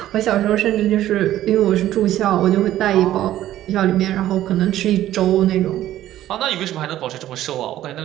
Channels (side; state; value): left; quieter; 13.2 dB